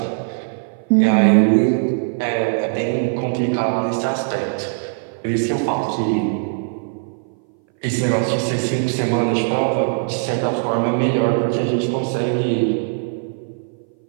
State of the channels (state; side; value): silent; left; 60 dB below the other